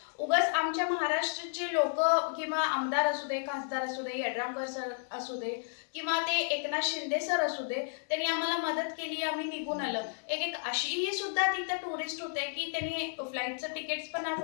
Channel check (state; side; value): silent; right; 55 dB below the other